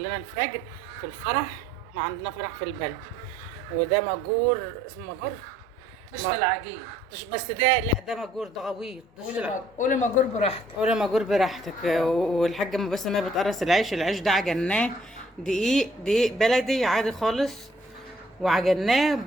الفجر في الفرح. احنا عندنا فرح في البلد، وده مجور، اسمه مجور مش في العجين. بس ده لا، ده مجور، ده غويط. قولي مجور براحتك. ولا مجور براحتك. والحاجة ام باسم هي بتقرص العيش. العيش ده عجناه دقيق بلدي عادي خالص، وعجناه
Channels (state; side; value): normal; both; correlation 0.62